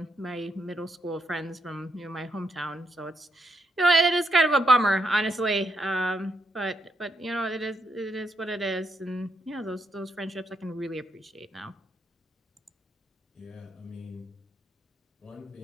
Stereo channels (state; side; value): normal; both; correlation 0.79